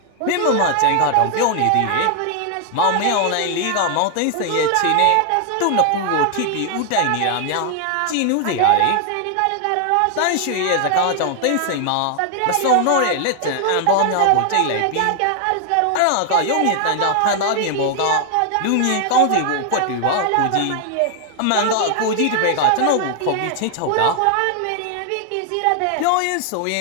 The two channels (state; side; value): different; both; correlation 0.00